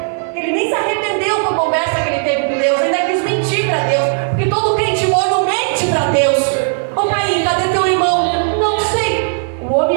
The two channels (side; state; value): left; silent; digital silence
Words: Ele nem se arrependeu com a conversa que ele teve com Deus, ainda quis mentir para Deus, porque todo crente morno mente para Deus. Ô Caim, cadê teu irmão? Não sei. O